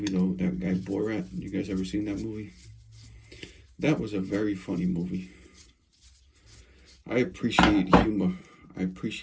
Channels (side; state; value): both; identical; correlation 1.00